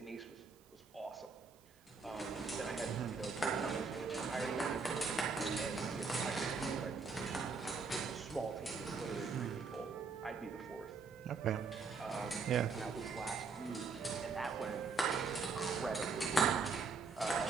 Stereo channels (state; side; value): quieter; left; 4.6 dB